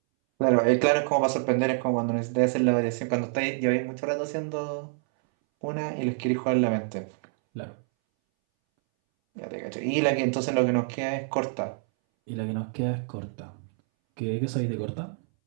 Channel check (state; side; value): silent; left; 60 dB below the other